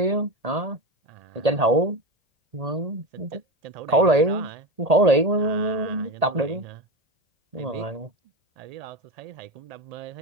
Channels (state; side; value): late; left; 1.8 ms